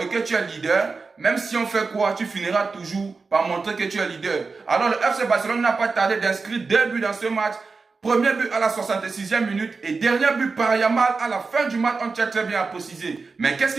que tu es leader, même si on fait quoi, tu finiras toujours par montrer que tu es leader. Alors le FC Barcelone n'a pas tardé d'inscrire 2 buts dans ce match. Premier but à la 66e minute et dernier but par Yamal à la fin du match, on tient très bien à préciser. Mais qu'est-ce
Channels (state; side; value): quieter; left; 4.4 dB